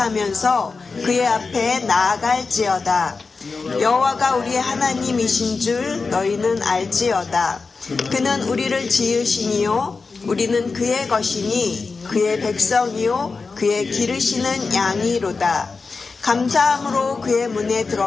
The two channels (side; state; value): right; quieter; 4.4 dB